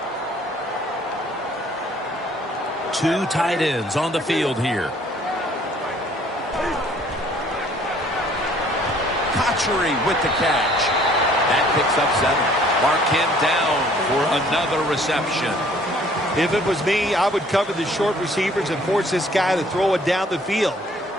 Two tight ends on the field here. Cotchery with the catch. That picks up 7. Mark him down for another reception. If it was me, I would cover the short receivers and force this guy to throw it down the field.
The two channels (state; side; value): normal; both; correlation 0.58